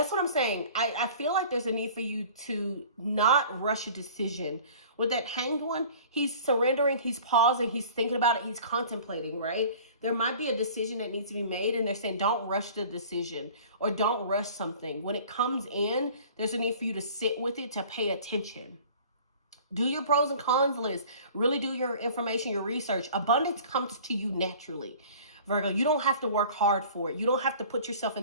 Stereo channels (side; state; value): both; inverted; correlation -0.46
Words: what I'm saying. I feel like there's a need for you to not rush a decision. With that Hanged One, he's surrendering, he's pausing, he's thinking about it, he's contemplating, right? There might be a decision that needs to be made, and they're saying don't rush the decision or don't rush something. When it comes in, there's a need for you to sit with it, to pay attention. Do your pros and cons list. Really do your information, your research. Abundance comes to you naturally. Virgo, you don't have to work hard for it. You don't have to put yourself in